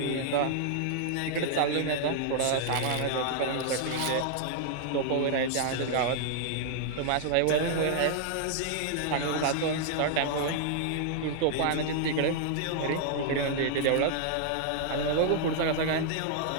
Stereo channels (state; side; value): different; both; correlation -0.01